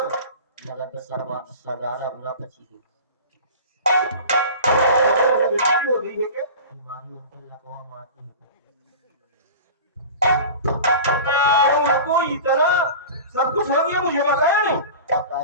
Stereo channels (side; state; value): both; inverted; correlation -0.35